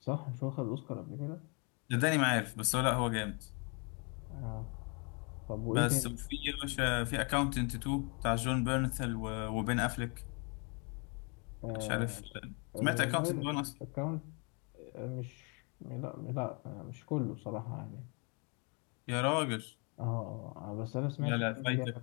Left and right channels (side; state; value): right; quieter; 34.2 dB